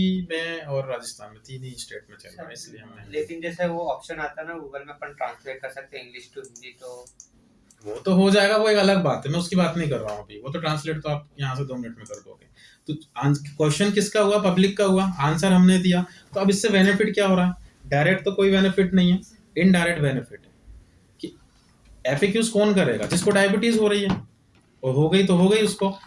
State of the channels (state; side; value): identical; both; correlation 1.00